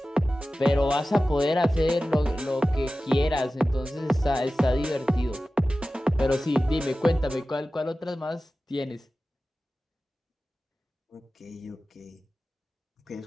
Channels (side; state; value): both; normal; correlation 0.95